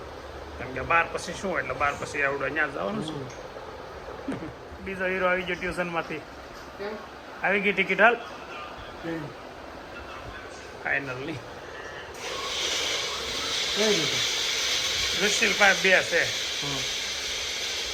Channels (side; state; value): both; identical; correlation 1.00